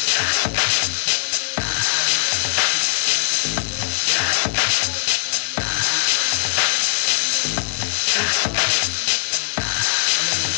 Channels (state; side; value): silent; right; digital silence